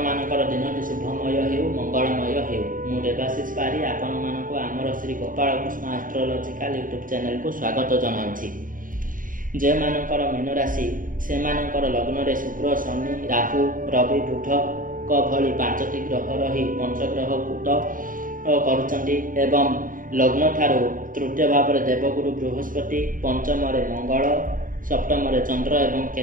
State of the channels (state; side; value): late; left; 0.39 ms